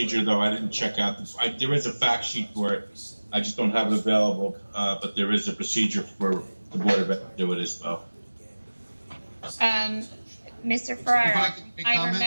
though. I didn't check out. There is a fact sheet for it. I just don't have it available, but there is a procedure for the Board of Ed to do it as well. Mr. Ferraro,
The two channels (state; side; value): inverted; both; correlation -1.00